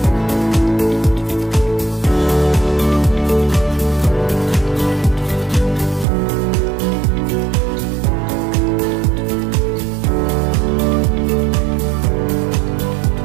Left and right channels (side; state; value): left; drops out; at 6.1 s